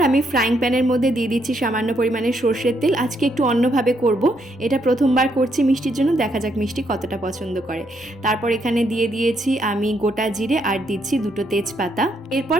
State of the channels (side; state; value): both; normal; correlation 0.75